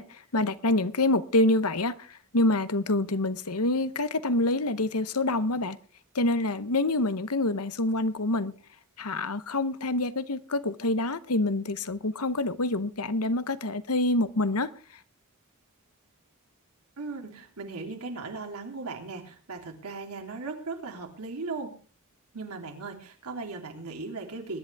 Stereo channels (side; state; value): both; normal; correlation 0.08